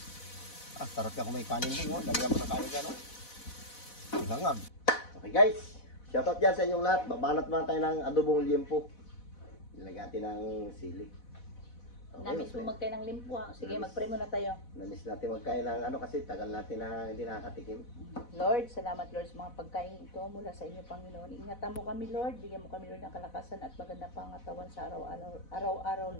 Sarap ka kung may kanin din. Lagyan mo ng kanin dyan. Silangag. Okay guys. Shoutout dyan sa inyong lahat. Babanat muna tayo ng adobong liempo. Nilagyan natin ng sili. Okay, Namiss mo magkain ng limpo ah. Sige, mag-pray muna tayo. Namiss natin magkain ng kasi tagal natin na hindi nakakatikim. Lord, salamat Lord sa mga pagkain ito mula sa inyo, Panginoon. Ingatan mo kami, Lord. Bigyan mo kami, Lord, ng kalakasan at magandang pangatawan sa araw-araw,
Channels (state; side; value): late; right; 4.1 ms